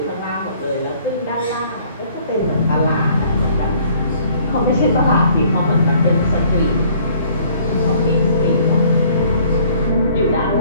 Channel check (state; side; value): inverted; both; correlation -0.58